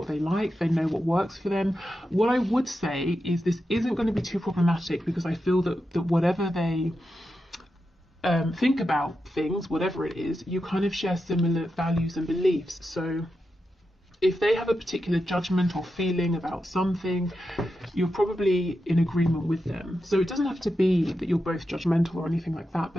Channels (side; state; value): both; normal; correlation 0.88